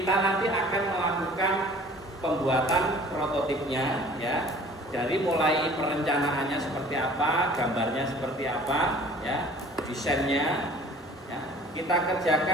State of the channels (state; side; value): normal; both; correlation 0.48